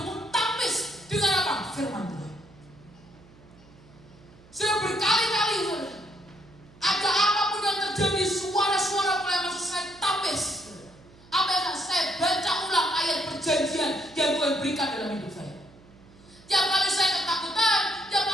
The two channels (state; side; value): noise; right; hum, 25 dB below the sound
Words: tampis dengan apa? Firman Tuhan. Sudah berkali-kali ada apapun yang terjadi, suara-suara mulai masuk, saya tampis. Apa yang saya baca ulang ayat perjanjian yang Tuhan berikan dalam hidup saya. Tiap kali saya ketakutan, tiap